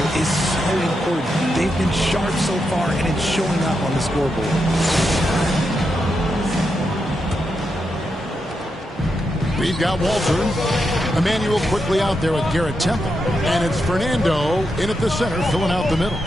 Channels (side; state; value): both; normal; correlation 0.85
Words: is so important. They've been sharp so far, and it's showing up on the scoreboard. We've got Walter. Emmanuel quickly out there with Garrett Temple. And it's Fernando in at the center, filling out the middle.